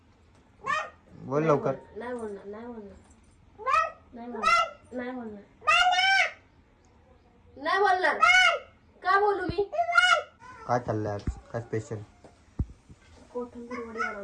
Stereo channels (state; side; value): identical; both; correlation 1.00